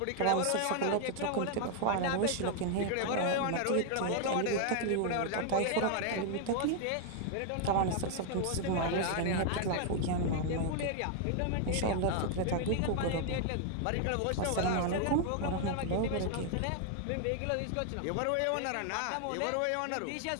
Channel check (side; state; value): both; different; correlation 0.00